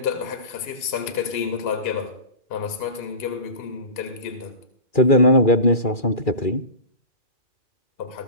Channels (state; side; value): late; right; 2.8 ms